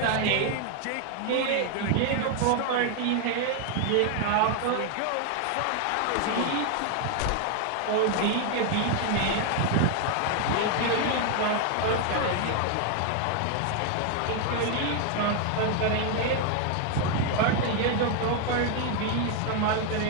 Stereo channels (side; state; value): both; different; correlation 0.01